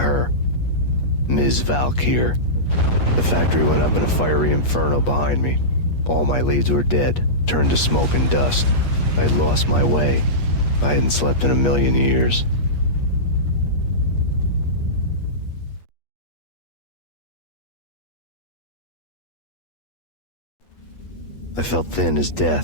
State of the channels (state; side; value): late; right; 8.4 ms